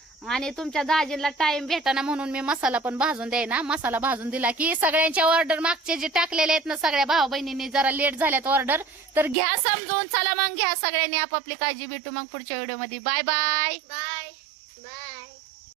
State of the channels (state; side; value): drops out; left; at 9.3 s